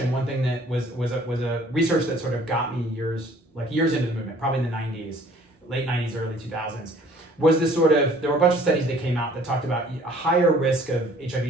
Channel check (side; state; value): both; normal; correlation 0.55